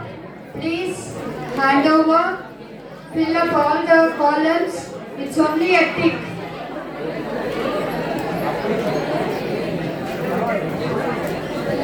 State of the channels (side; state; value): both; identical; correlation 1.00